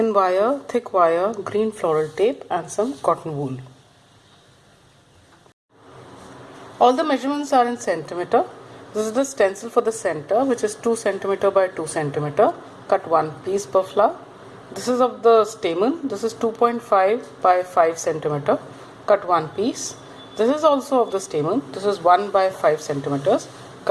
wire, thick wire, green floral tape and some cotton wool. All the measurements are in centimeter. This is the stencil for the center, which is 2 centimeter by 2 centimeter. Cut one piece per flower. This is of the stamen. This is 2.5 by 5 centimeter. Cut one piece. This is also of the stamen. This is 1 by 5 centimeters.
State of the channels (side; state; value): both; identical; correlation 1.00